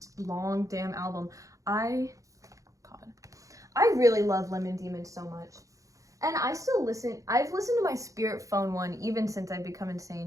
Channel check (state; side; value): late; left; 0.16 ms